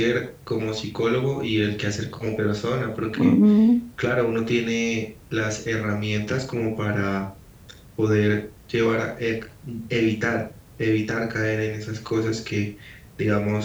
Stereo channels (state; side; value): identical; both; correlation 1.00